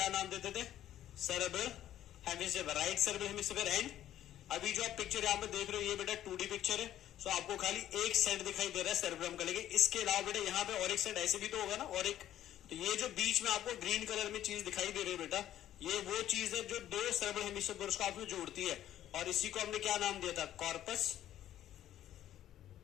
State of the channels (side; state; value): right; quieter; 12.1 dB